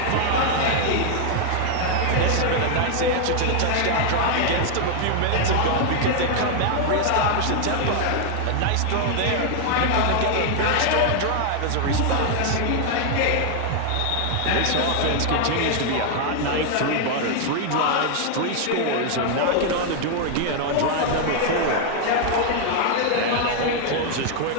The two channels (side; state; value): both; different; correlation 0.00